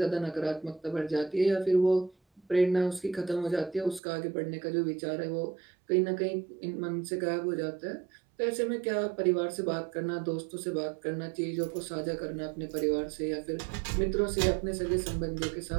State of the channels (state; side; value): drops out; left; at 4.0 s